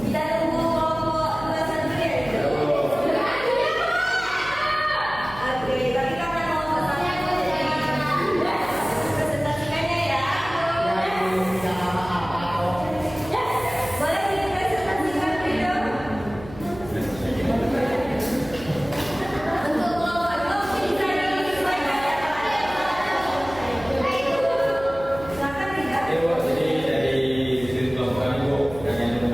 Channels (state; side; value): noise; right; hum, 15 dB below the sound